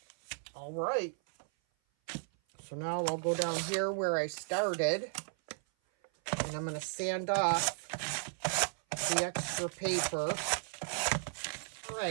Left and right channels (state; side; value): silent; left; 54 dB below the other